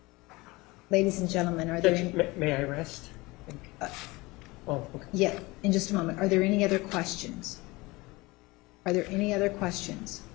Ladies and gentlemen, are there, May I rest? Oh, okay. yeah, in just a moment. Are there any other questions? Are there any other questions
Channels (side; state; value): right; quieter; 22.6 dB